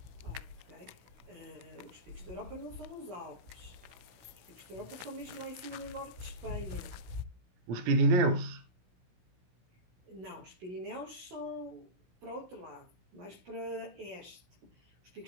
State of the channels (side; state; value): left; late; 16 ms